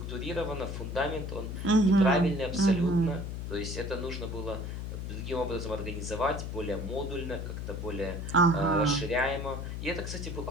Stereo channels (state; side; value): noise; left; hum, 5 dB below the sound